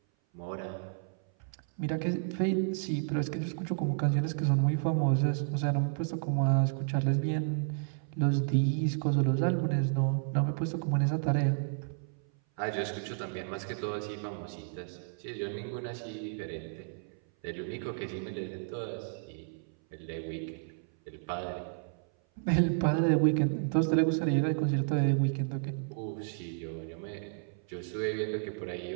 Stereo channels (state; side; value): silent; left; 56 dB below the other